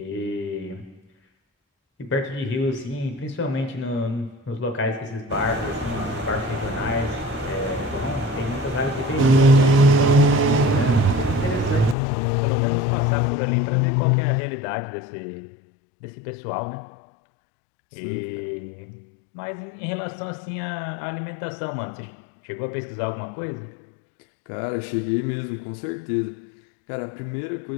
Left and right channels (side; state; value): right; drops out; at 12.0 s